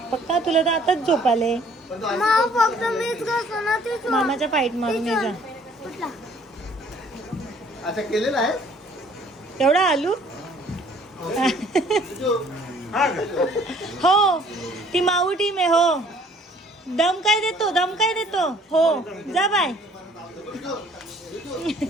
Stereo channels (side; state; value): both; normal; correlation 0.58